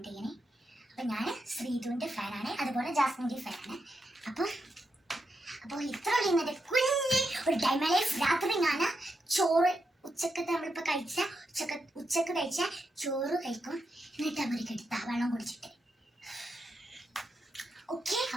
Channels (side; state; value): both; normal; correlation 0.84